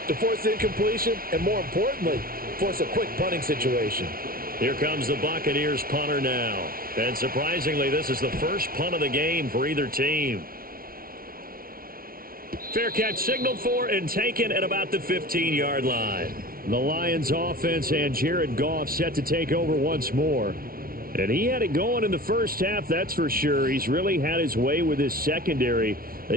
to force incompletion and, more importantly, force a quick punting situation. Here comes the Buccaneers punter now. And surprisingly, this is the first punt of the game for either team. Fair catch signaled for and taken at about the 15-yard line. The Lions offense and Jared Goff set to take over once more. And he had it going in the first half, that's for sure. He's really had his way with his secondary.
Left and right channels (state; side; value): late; left; 0.43 ms